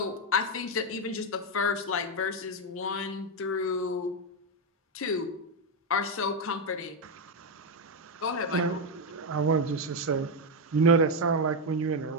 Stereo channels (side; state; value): both; normal; correlation 0.05